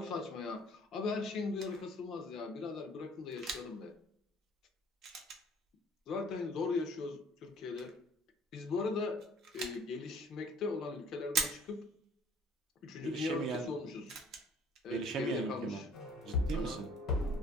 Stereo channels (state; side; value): normal; both; correlation 0.54